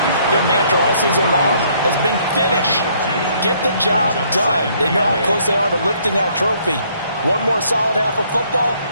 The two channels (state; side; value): inverted; both; correlation -0.65